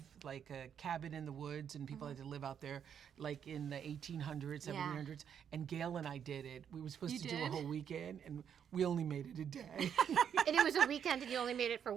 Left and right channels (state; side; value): quieter; left; 8.3 dB